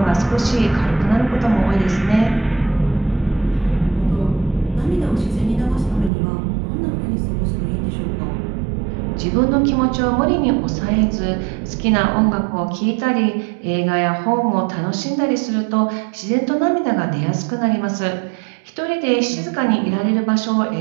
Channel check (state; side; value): drops out; left; at 6.1 s